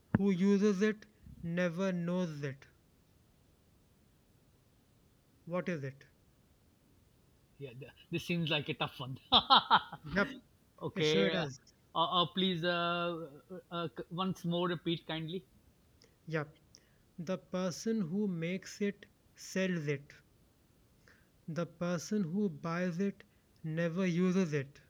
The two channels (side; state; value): both; identical; correlation 1.00